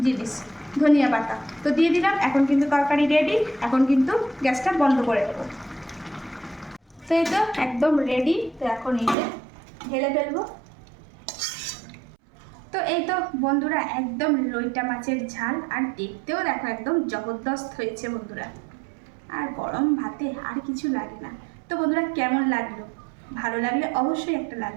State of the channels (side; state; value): left; drops out; at 9.2 s